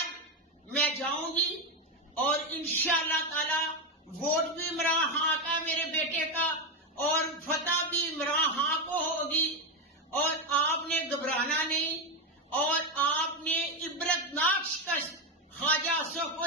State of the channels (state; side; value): normal; both; correlation 0.09